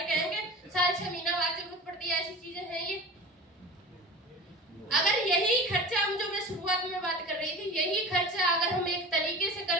कहेंगे साल 6 महीना बाद जरूरत पड़ती है, ऐसी चीजें हैं ये। अगर यही खर्चा हम जो मैं शुरुआत में बात कर रही थी, यही खर्चा अगर हम एक तरीके से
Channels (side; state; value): both; normal; correlation 0.35